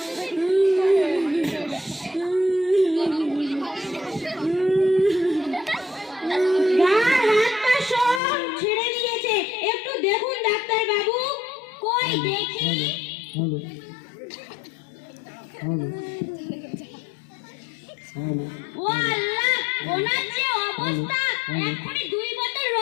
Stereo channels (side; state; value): right; drops out; at 8.2 s